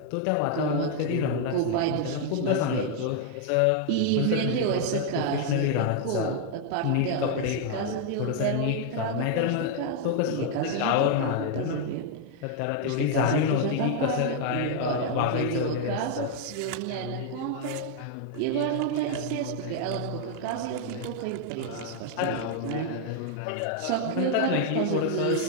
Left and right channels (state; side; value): different; both; correlation 0.00